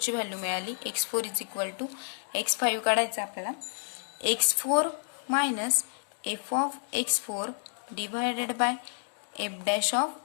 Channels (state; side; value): silent; right; digital silence